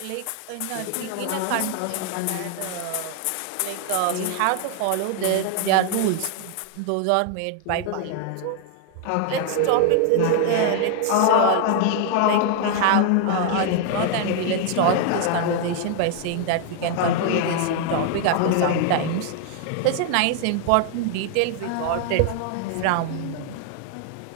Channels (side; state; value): both; different; correlation 0.00